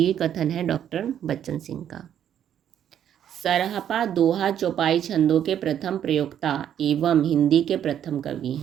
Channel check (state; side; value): quieter; left; 9.8 dB